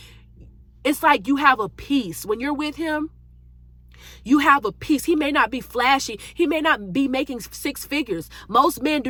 it's like you have a peace. When you're with him, you have a peace. He may not be flashy. He may not be making six figures. Most men do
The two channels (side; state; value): both; identical; correlation 1.00